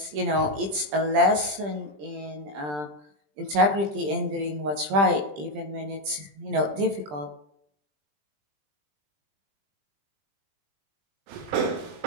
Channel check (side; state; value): left; late; 20 ms